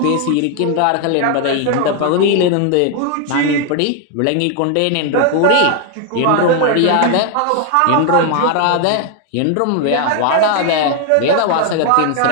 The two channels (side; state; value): both; different; correlation 0.00